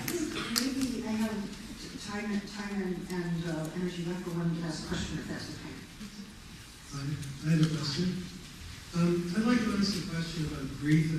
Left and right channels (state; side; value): identical; both; correlation 1.00